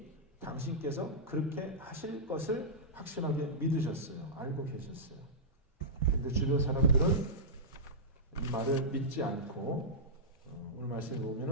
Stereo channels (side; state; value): both; normal; correlation -0.12